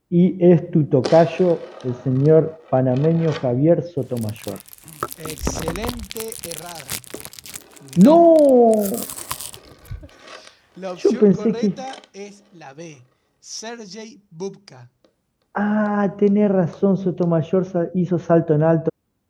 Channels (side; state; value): both; identical; correlation 1.00